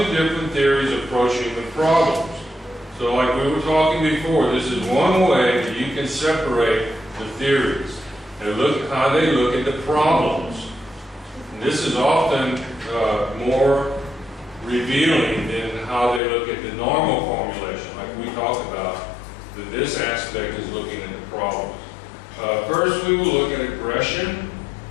different theories approach human problems? So like we were talking before, this is one way that you can separate the theories and look at how they look at the problems. And this is often more revealing than how they look at the normal formulation, like we talked about, that this aspect is looking at the problems. First, we will look at aggression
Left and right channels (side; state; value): right; drops out; at 16.2 s